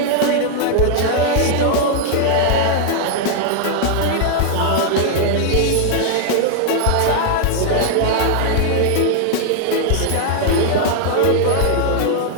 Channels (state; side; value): different; both; correlation 0.00